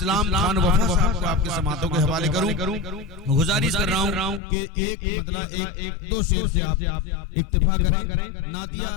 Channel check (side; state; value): right; drops out; at 4.4 s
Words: खान वफा साहब को आपके समातों के हवाले करूं। गुजारिश कर रहा हूं कि एक मतलब एक दो शेर से आप इक्तिफा करें, नातिया